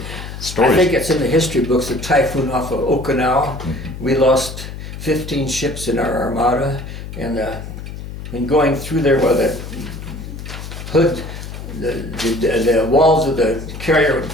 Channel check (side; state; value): left; noise; hum, 10 dB below the sound